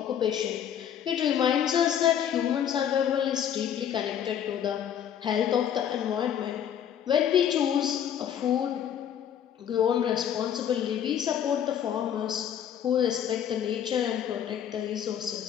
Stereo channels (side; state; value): right; quieter; 9.4 dB